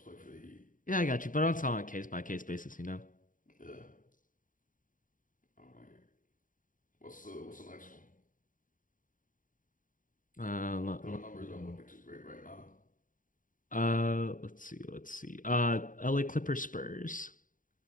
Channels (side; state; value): right; late; 0.39 ms